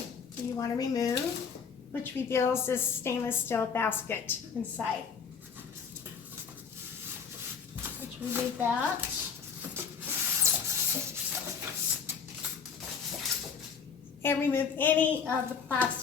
that you want to remove, which reveals this stainless steel basket inside. Let's remove that. And remove any of the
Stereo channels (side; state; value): right; quieter; 6.3 dB